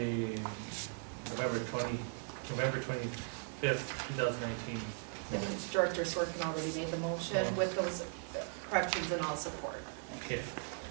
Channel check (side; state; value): left; silent; 52 dB below the other